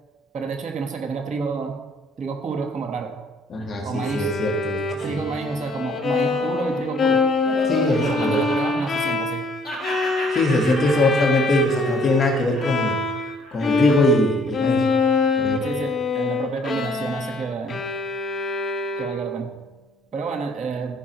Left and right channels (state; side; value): normal; both; correlation 0.61